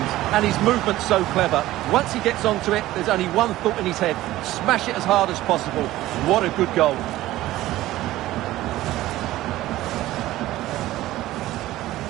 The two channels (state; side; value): quieter; left; 15.8 dB